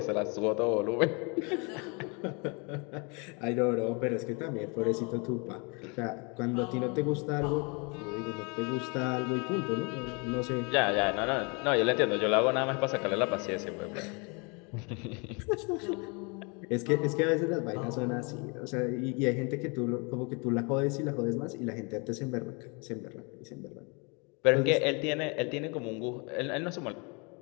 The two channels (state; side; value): quieter; right; 31.9 dB